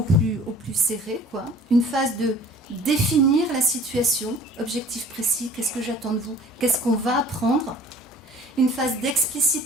plus serré, une phase de définir la situation, objectif précis, qu'est-ce que j'attends de vous, qu'est-ce qu'on va apprendre, une phase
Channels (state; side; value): normal; both; correlation 0.50